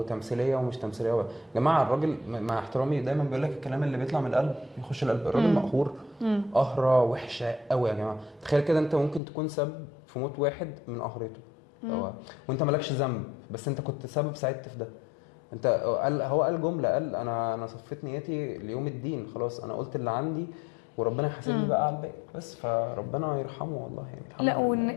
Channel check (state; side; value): drops out; right; at 9.2 s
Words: ومش تمثيليه يا جماعه الراجل مع احترامي دايما بيقول لك الكلام اللي بيطلع من القلب يخش القلب. الراجل مقهور قهره وحشه قوي يا جماعه. تخيل كده انت ممكن تكون سبب في موت واحد من قهرته. وانت مالكش ذنب، بس انت كنت سبب، ساعدت في ده. انت هو قال جمله، قال انا صفيت نيتي ليوم الدين، خلاص انا قلت اللي عندي وربنا يحاسبني بقى على الباقي. بس فربنا يرحمه والله يعني، الحمد لا، لله. وان